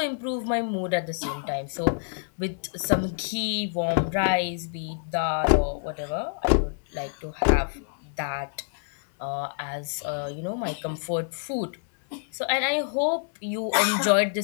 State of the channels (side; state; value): right; silent; digital silence